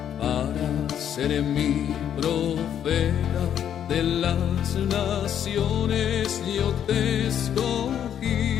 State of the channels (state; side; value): quieter; right; 9.5 dB